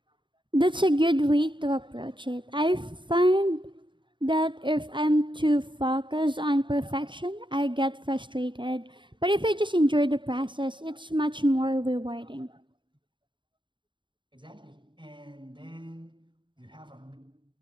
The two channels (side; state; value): left; late; 0.23 ms